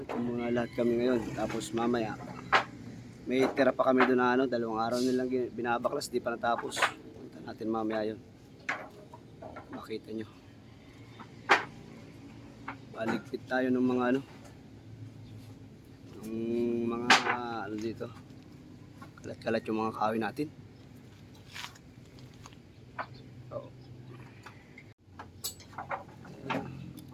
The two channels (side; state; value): both; identical; correlation 1.00